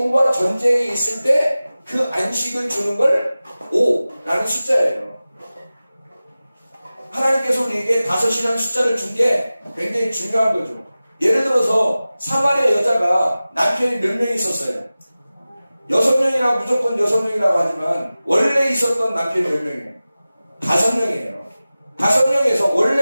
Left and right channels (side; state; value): both; inverted; correlation -0.96